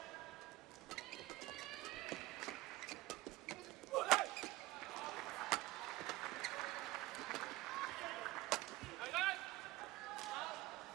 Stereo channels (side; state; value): left; quieter; 18.8 dB